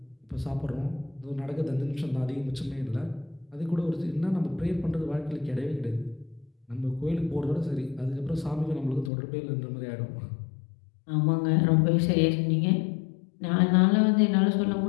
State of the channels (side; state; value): right; drops out; at 9.1 s